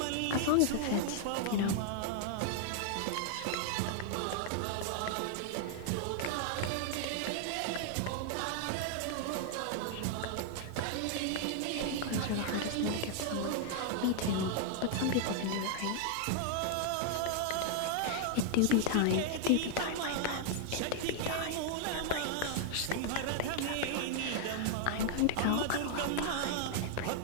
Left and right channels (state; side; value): different; both; correlation 0.00